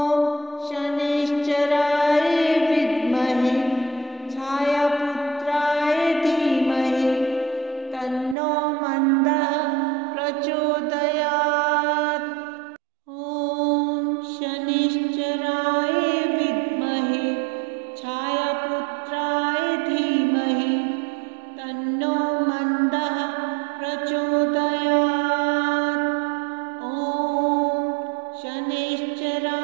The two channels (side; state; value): left; drops out; at 8.3 s